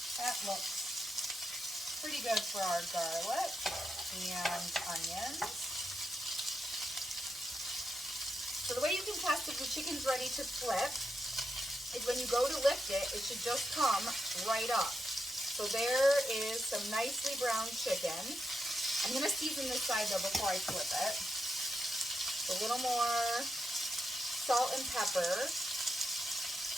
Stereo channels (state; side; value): normal; both; correlation 0.85